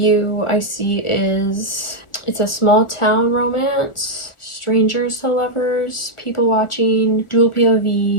I see is it's a small town romance. Strangers to lovers, people watching, dual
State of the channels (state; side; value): late; right; 1.4 ms